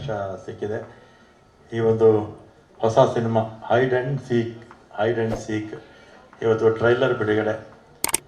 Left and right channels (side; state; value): both; identical; correlation 1.00